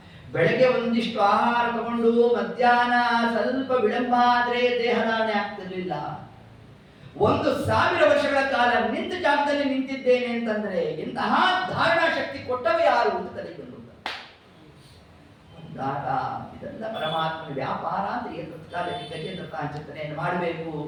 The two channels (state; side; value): identical; both; correlation 1.00